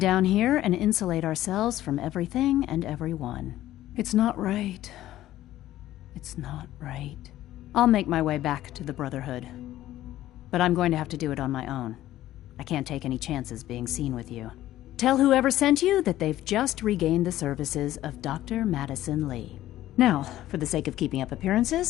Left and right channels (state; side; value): quieter; right; 14.1 dB